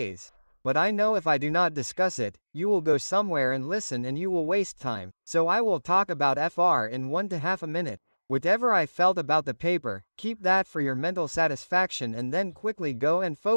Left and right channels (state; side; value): inverted; both; correlation -1.00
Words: But I know if I do not discuss it, you will go somewhere and listen and you will waste time. So I will talk about FR in 1.5 minutes. Whatever I felt about the paper, keep that for your mental satisfaction and then quickly go and